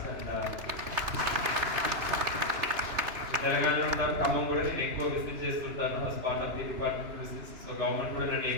And తెలంగాణలో ఉంటాను, ఖమ్మం కూడా నేను ఎక్కువ విజిట్ చేస్తుంటాను as part of the department visits. So government కూడా నన్ను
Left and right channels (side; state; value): left; late; 2.9 ms